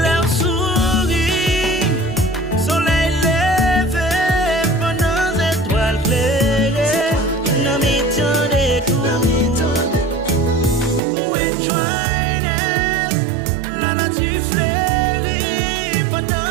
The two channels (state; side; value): drops out; left; at 11.0 s